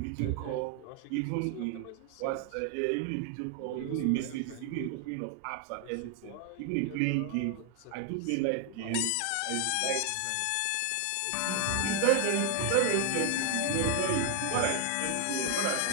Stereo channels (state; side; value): different; both; correlation 0.01